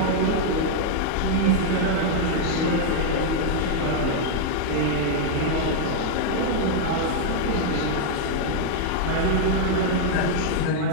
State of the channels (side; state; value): both; different; correlation 0.00